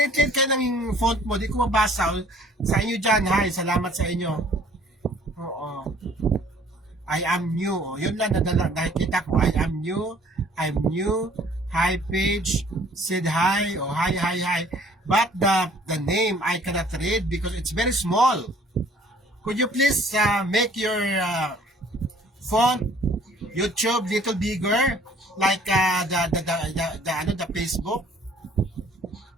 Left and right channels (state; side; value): normal; both; correlation 0.56